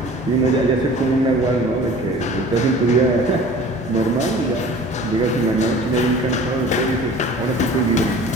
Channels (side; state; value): both; normal; correlation 0.44